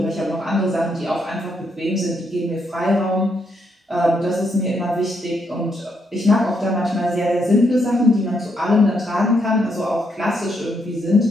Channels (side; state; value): both; normal; correlation 0.77